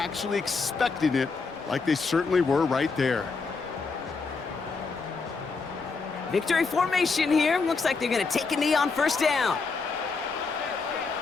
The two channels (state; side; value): quieter; right; 4.5 dB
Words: expecting it, like they certainly were right there. Victory formation here. Looks like they're going to take a knee on 1st down.